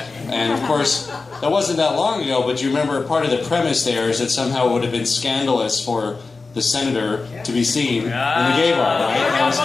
And of course, that wasn't that long ago. But you remember part of the premise there is that somehow it would have been scandalous for the senator to be seen in the gay bar, right? That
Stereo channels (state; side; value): quieter; right; 4.0 dB